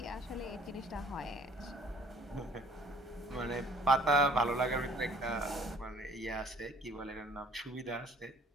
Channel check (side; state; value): both; normal; correlation 0.55